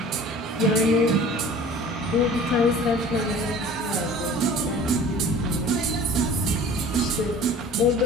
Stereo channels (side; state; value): both; normal; correlation 0.44